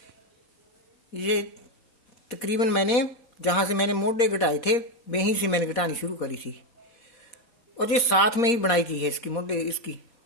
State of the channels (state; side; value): late; right; 4.2 ms